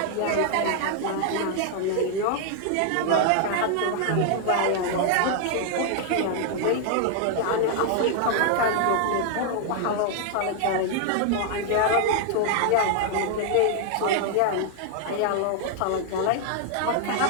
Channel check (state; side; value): different; both; correlation 0.00